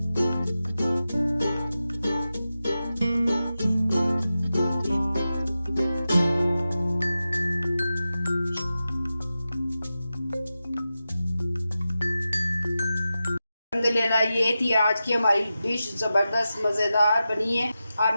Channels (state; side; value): inverted; both; correlation -0.92